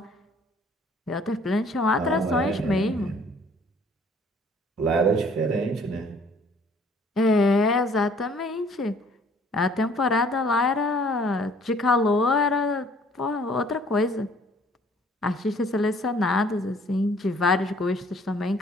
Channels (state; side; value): normal; both; correlation 0.58